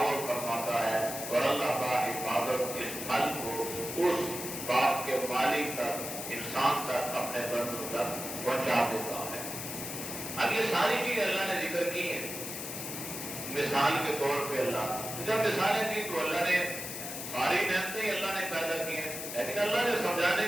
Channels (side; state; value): left; noise; hiss, 7 dB below the sound